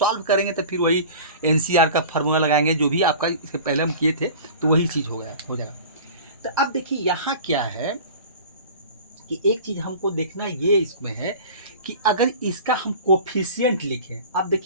करेंगे तो फिर वही NCR का फार्मूला लगाएंगे, जो भी आपका इसके पहले हम किए थे, तो वही चीज़ हो जाएगा। तो अब देखिए यहाँ क्या है कि एक चीज़ हमको देखना ये इसमें है कि अगर इसका हम कोफिशिएंट लिखें, अब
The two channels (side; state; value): both; inverted; correlation -0.39